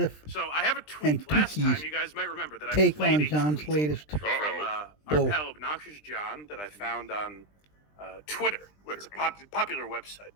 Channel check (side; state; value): right; late; 20 ms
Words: So I have a tweet. and Last time, Tookie's you guys might remember that I take played on a John's tweet latest from our bull. pal Obnoxious John that I found on Twitter. It's a popular website.